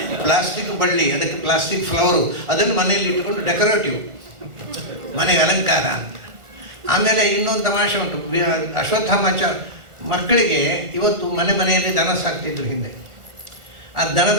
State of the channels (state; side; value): late; left; 1.4 ms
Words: ಪ್ಲಾಸ್ಟಿಕ್ ಬಳ್ಳಿ, ಅದಕ್ಕೆ ಪ್ಲಾಸ್ಟಿಕ್ ಫ್ಲವರು, ಅದನ್ನು ಮನೆಯಲ್ಲಿ ಇಟ್ಟುಕೊಂಡು ಡೆಕೋರೇಟಿವ್, ಮನೆಗೆ ಅಲಂಕಾರ. ಆಮೇಲೆ ಇನ್ನೊಂದು ತಮಾಷೆ ಉಂಟು. ಅಶ್ವತ್ಥಾಮಾಚ ಮಕ್ಕಳಿಗೆ ಇವತ್ತು ಮನೆಯಲ್ಲಿ ದನ ಸಾಕ್ತಿದ್ರು ಹಿಂದೆ. ಆ